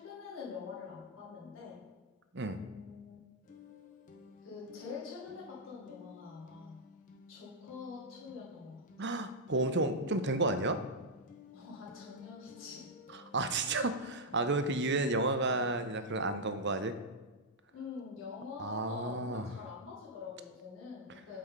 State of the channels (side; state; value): both; normal; correlation -0.04